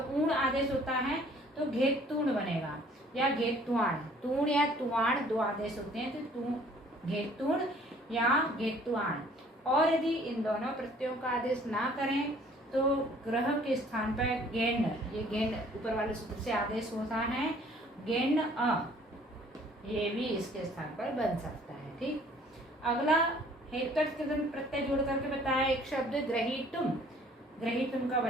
ऊण आदेश होता है तो घेतूण बनेगा या घेतुआण। तूण या तुआण 2 आदेश होते हैं, तो घेतूण या घेतुआण। और यदि इन दोनों प्रत्ययों का आदेश ना करें तो ग्रह के स्थान पर गेंड, ये गेंड ऊपर वाले सूत्र से आदेश होता है, गेंड अ ये भी इसके स्थान पर बन सकता है। ठीक, अगला हेतुअर्थ कृदंत प्रत्यय जोड़ करके बताया एक शब्द ग्रहीतुम। ग्रहीतुम का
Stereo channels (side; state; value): both; normal; correlation 0.56